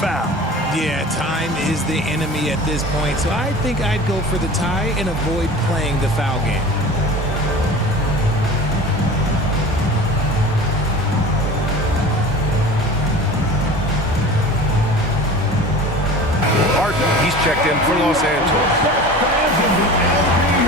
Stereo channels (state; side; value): normal; both; correlation 0.38